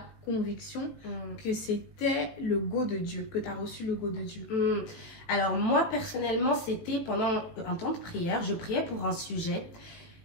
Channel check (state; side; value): late; right; 18 ms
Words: conviction que c'était le go de Dieu, que tu as reçu le go de Dieu? Alors, moi, personnellement, c'était pendant un temps de prière. Je priais pour un sujet